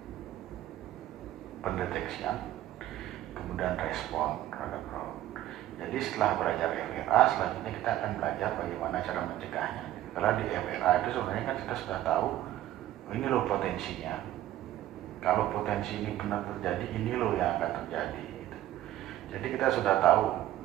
pendeteksian, kemudian respon terhadap fraud. Jadi setelah belajar FRA, selanjutnya kita akan belajar bagaimana cara mencegahnya. Kalau di FRA itu sebenarnya kan kita sudah tahu, ini loh potensinya. Kalau potensi ini benar terjadi, ini loh yang akan terjadi. Gitu. Jadi kita sudah tahu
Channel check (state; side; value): quieter; left; 13.5 dB